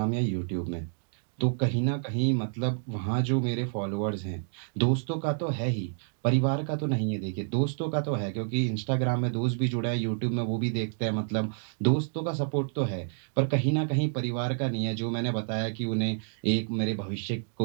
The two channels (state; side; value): silent; left; digital silence